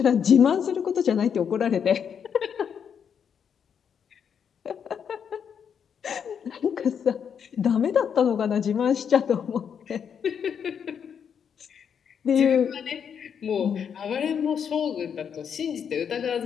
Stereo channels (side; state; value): right; quieter; 7.5 dB